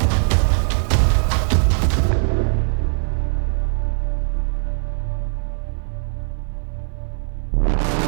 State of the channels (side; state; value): left; silent; 59 dB below the other